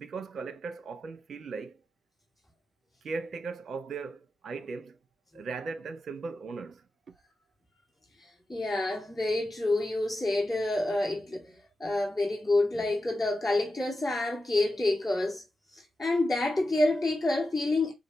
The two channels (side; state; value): both; normal; correlation 0.91